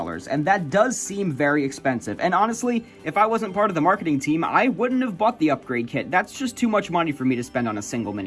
and that does seem very expensive. And honestly, if I wasn't part of the marketing team, I wouldn't have bought the upgrade kit. That's just too much money for me to spend on a single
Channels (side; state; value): both; identical; correlation 1.00